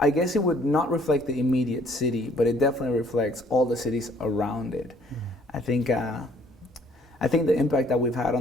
guess it would not reflect the immediate city, but it definitely reflects all the cities around it. I think the impact that we've had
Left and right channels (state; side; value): normal; both; correlation 0.61